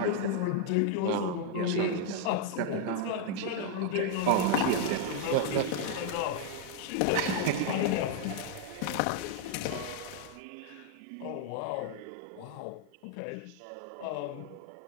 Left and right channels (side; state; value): both; different; correlation 0.00